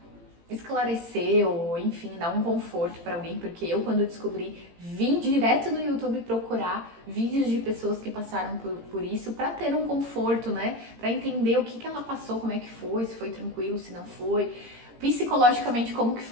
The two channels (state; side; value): late; left; 18 ms